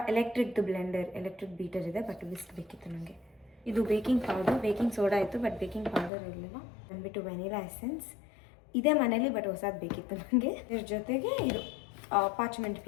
ಎಲೆಕ್ಟ್ರಿಕ್ ಬೀಟರ್ ಇದೆ, ಬಟ್ ವಿಸ್ಕ್ ಬೇಕಿತ್ತು ನನಗೆ. ಇದು ಬೇಕಿಂಗ್ ಪೌಡರ್, ಬೇಕಿಂಗ್ ಸೋಡಾ ಇತ್ತು ಬಟ್ ಬೇಕಿಂಗ್ ಪೌಡರ್ ಇರಲಿಲ್ಲ. ಬಂದುಬಿಟ್ಟು ವೆನಿಲಾ ಎಸೆನ್ಸ್ ಇದೇ ಮನೇಲಿ, ಬಟ್ ಹೊಸದು ಬೇಕಿತ್ತು ನನಗೆ. ಇದ್ರ ಜೊತೆಗೆ ಇದು ಪಾರ್ಚ್ಮೆಂಟ್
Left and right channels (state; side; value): drops out; right; at 6.1 s